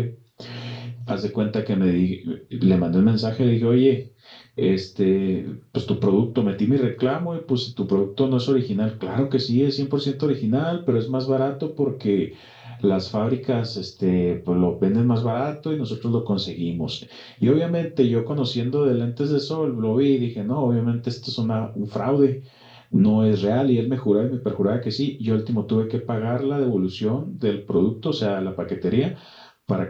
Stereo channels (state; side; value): identical; both; correlation 1.00